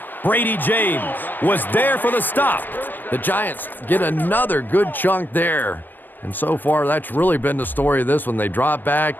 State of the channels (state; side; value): late; right; 0.090 ms